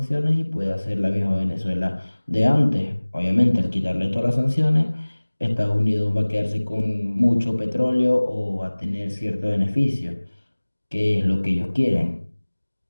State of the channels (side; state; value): both; inverted; correlation -1.00